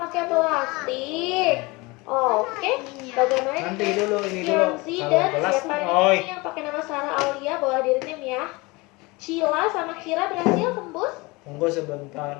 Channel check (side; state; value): right; quieter; 24.4 dB